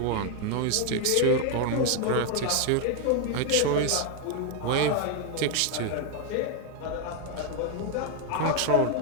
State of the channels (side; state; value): both; different; correlation 0.01